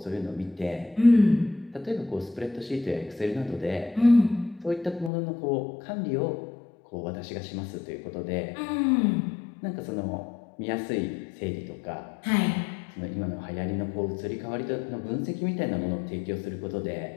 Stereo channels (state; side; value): drops out; right; at 5.1 s